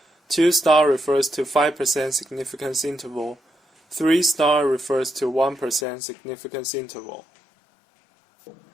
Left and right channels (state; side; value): drops out; right; at 5.9 s